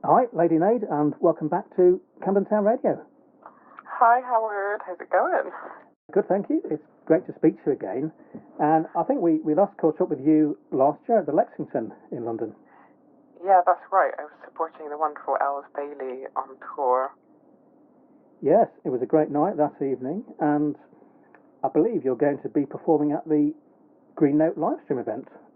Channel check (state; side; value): identical; both; correlation 1.00